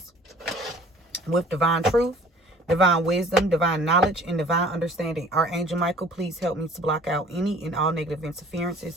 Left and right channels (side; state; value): both; normal; correlation 0.51